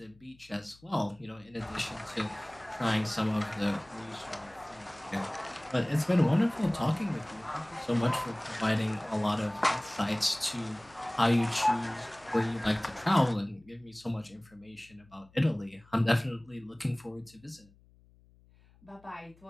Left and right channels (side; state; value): left; noise; hum, 28 dB below the sound